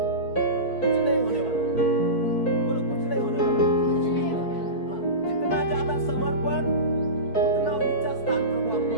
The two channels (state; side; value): late; right; 4.6 ms